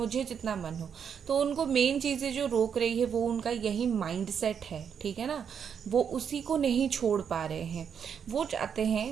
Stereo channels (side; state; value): left; quieter; 7.5 dB